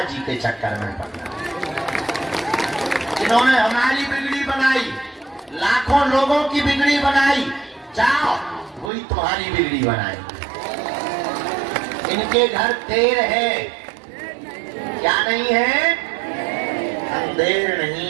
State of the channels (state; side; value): drops out; left; at 8.9 s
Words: के चक्कर में पड़ना। जिन्होंने हमारी बिगड़ी बनाई, लाखों लोगों की बिगड़ी बनाई, जाओ वही तुम्हारी बिगड़ी बनाई। इनके घर देर है, क्या नहीं है? अंधेर